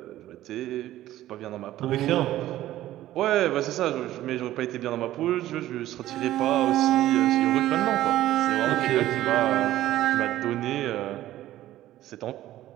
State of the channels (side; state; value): left; quieter; 14.2 dB